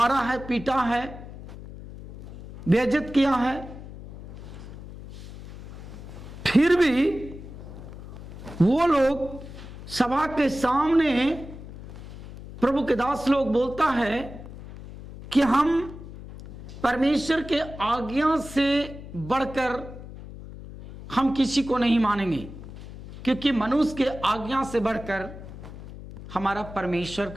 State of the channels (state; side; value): noise; left; hum, 14 dB below the sound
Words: है, पीटा है, बेइज्जत किया है, फिर भी वो लोग सभा के सामने प्रभु के दास लोग बोलता है कि हम परमेश्वर के आज्ञा से बढ़कर हम किसी को नहीं मानेंगे, क्योंकि मनुष्य के आज्ञा से बढ़कर हमारा परमेश्वर